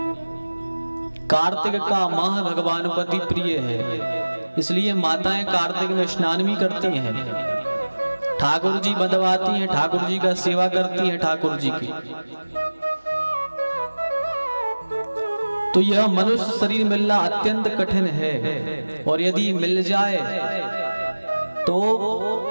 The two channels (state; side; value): inverted; both; correlation -1.00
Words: कार्तिक का माह भगवान को अति प्रिय है, इसलिए माताएं कार्तिक में स्नान भी करती हैं, ठाकुर जी बंधवाती हैं, ठाकुर जी का सेवा करती हैं ठाकुर जी की। तो यह मनुष्य शरीर मिलना अत्यंत कठिन है और यदि मिल जाए तो